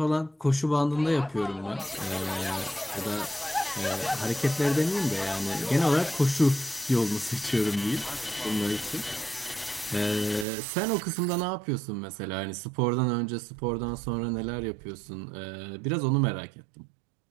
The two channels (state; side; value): drops out; left; at 10.5 s